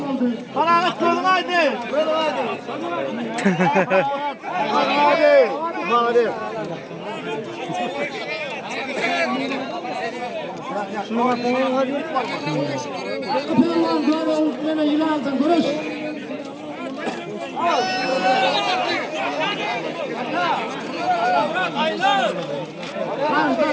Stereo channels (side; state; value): both; identical; correlation 1.00